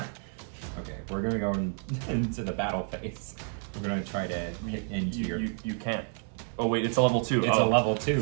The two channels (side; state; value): left; silent; 58 dB below the other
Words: Okay, we're gonna go into the battle phase. We're gonna try to hit into your... You can't. Oh, wait, it's a level 2. It's a level 2.